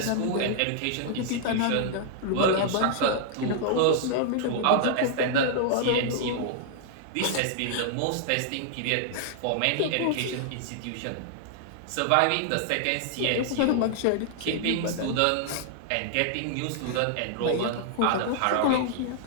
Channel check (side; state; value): both; different; correlation -0.01